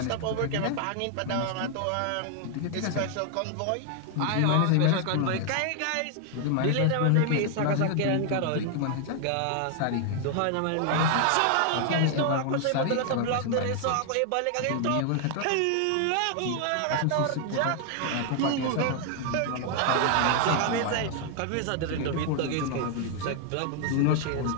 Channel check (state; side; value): different; both; correlation 0.00